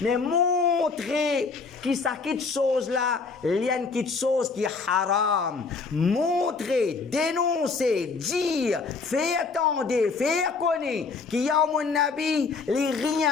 montrer que ça quitte chose là, il y a une quitte chose qui est haram. Montrer, dénoncer, dire, faire attendre, faire connaître qu'il y a mon Nabi, les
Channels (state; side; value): quieter; right; 4.6 dB